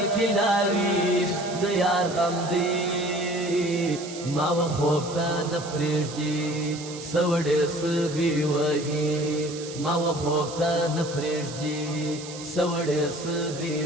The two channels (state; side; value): noise; right; hiss, 13 dB below the sound